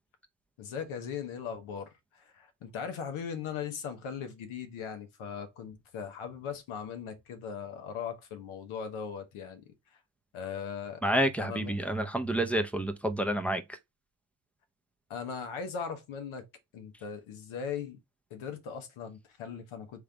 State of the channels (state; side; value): normal; both; correlation 0.50